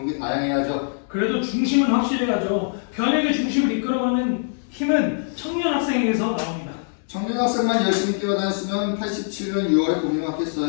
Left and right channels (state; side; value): silent; right; digital silence